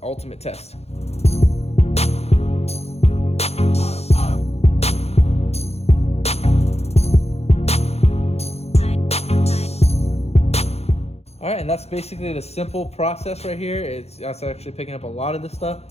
ultimate test. All right, and that's basically the simple process right here. That's actually picking up a lot of this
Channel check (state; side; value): late; right; 0.30 ms